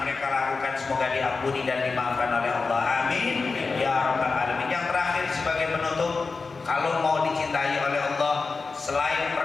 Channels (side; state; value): right; quieter; 4.3 dB